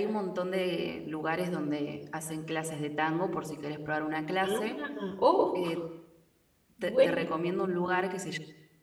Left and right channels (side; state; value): both; identical; correlation 1.00